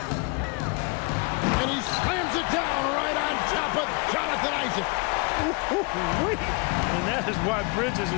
And he slams it down right on top of Jonathan Isaac. And that is why Bridges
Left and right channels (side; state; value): right; quieter; 31.0 dB